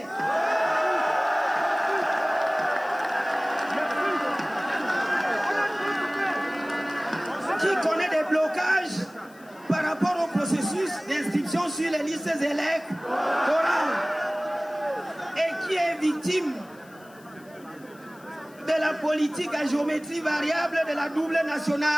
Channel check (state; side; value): noise; left; hiss, 27 dB below the sound